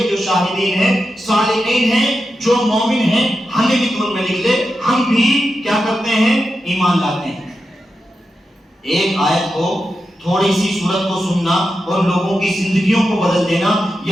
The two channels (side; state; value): both; normal; correlation 0.89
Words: جو شاہدین ہیں, صالحین ہیں, جو مومن ہیں, ہمیں بھی تو ان میں لکھ لے, ہم بھی کیا کرتے ہیں, ایمان لاتے ہیں. ایک آیت کو, تھوڑی سی صورت کو سننا اور لوگوں کی زندگیوں کو بدل دینا.